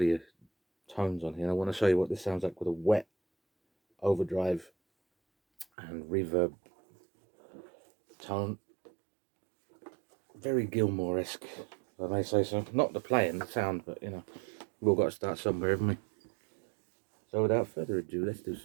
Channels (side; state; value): left; drops out; at 5.7 s